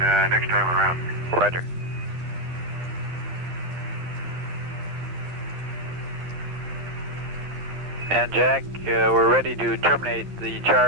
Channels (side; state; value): left; late; 12 ms